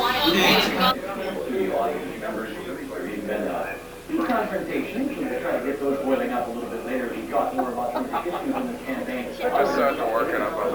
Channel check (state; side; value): identical; both; correlation 1.00